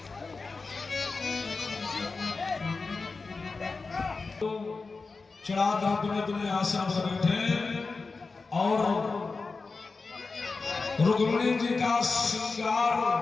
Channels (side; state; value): right; quieter; 4.1 dB